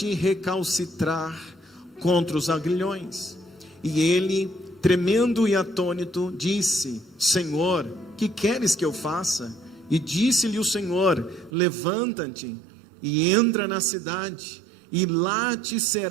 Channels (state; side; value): drops out; left; at 11.5 s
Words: recalcitrar contra os aguilhões. E ele, tremendo e atônito, disse: Senhor, que queres que eu faça? E disse-lhe o Senhor: Levanta-te e entra na cidade, e lá te